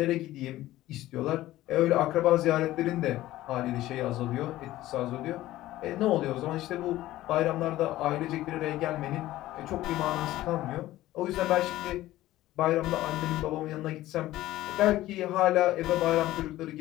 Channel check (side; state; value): right; quieter; 15.6 dB